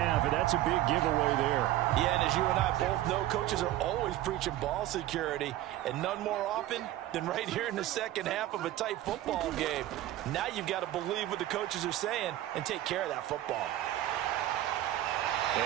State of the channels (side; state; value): left; quieter; 14.4 dB